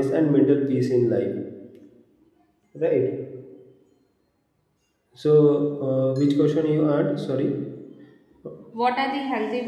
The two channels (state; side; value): identical; both; correlation 1.00